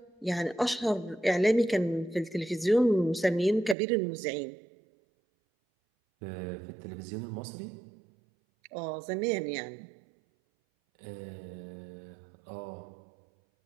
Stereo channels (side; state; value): left; drops out; at 3.8 s